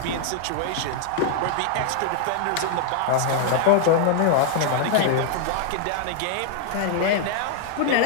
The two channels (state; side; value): different; both; correlation 0.00